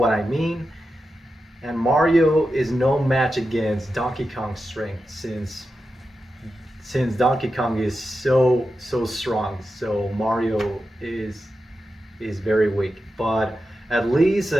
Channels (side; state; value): both; normal; correlation 0.90